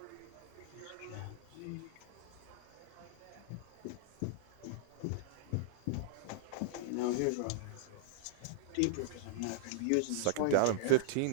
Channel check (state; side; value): different; both; correlation -0.01